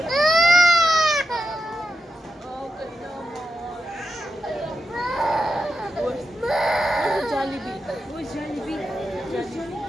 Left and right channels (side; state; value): both; normal; correlation 0.88